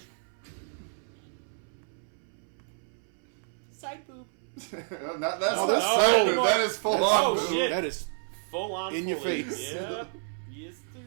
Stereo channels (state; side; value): silent; left; 58 dB below the other